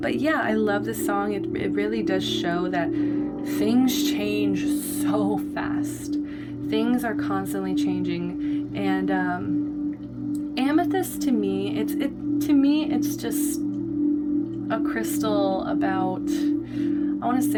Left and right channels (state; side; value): identical; both; correlation 1.00